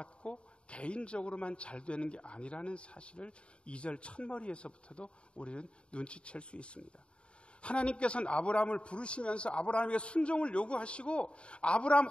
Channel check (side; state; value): right; late; 0.056 ms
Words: 개인적으로만 잘 되는 게 아니라는 사실을 2절 첫머리에서부터도 우리는 눈치챌 수 있습니다. 하나님께서는 아브라함을 부르시면서 아브라함에게 순종을 요구하시고 아브라함